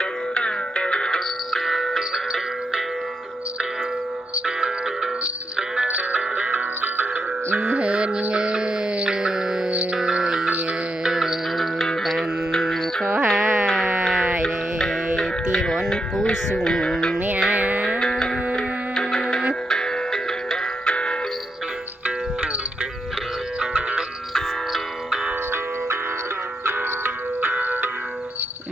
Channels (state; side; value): normal; both; correlation 0.83